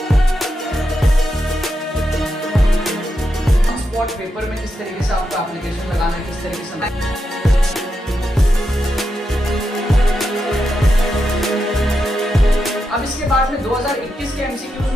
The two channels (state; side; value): normal; both; correlation 0.86